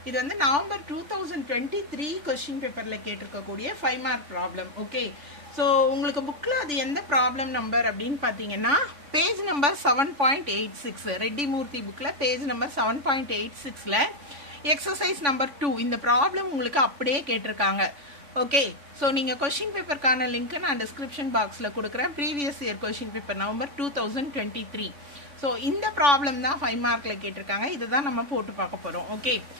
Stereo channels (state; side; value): late; left; 3.5 ms